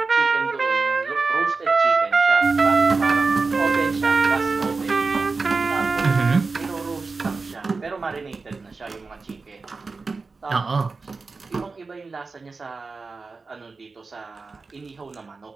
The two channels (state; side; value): quieter; left; 4.1 dB